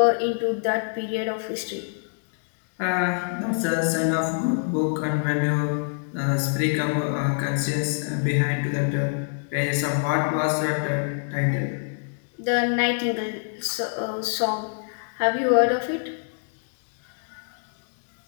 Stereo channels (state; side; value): silent; right; digital silence